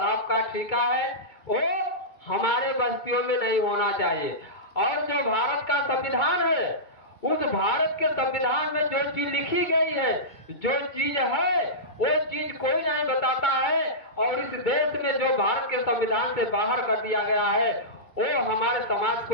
का ठेका है, वो हमारे बस्तियों में नहीं होना चाहिए। और जो भारत का संविधान है, उस भारत के संविधान में जो चीज लिखी गई है, जो चीज है, वो चीज कोई नहीं बताता है। और इस देश में जो भारत के संविधान से बाहर कर दिया गया है, वो हमारे समाज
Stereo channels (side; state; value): right; late; 2.3 ms